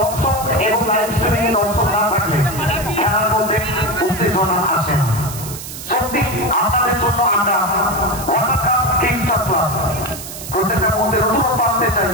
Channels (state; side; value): noise; right; hiss, 11 dB below the sound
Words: এবং লাইভ স্ট্রিমিং এ দর্শক না থাকলে খেলার মধ্যে উত্তেজনা আসে না। সত্যি আপনাদের জন্য আমরা ওয়ার্ল্ড কাপ কিংস ক্লাব প্রত্যেকটা মধ্যে নতুনত্ব আনতে চাই।